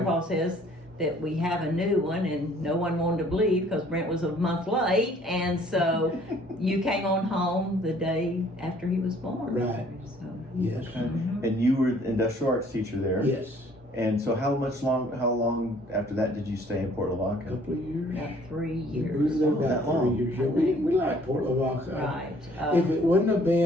says that we have a new one, and no one wanted to believe because Brent was a month late. And so you came on home the day after he was born. Right. So, Yes. Okay. And you were industrial arts teacher there. Yes. And so how long after that did you stay in Port A Lavaca? couple of years. about 3 We years. were there that about long. 3 years. Yeah, we like Port Lavaca. Right. If it wouldn't have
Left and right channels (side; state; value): both; normal; correlation 0.58